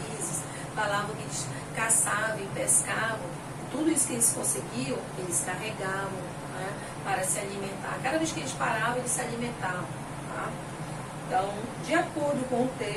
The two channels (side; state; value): both; identical; correlation 1.00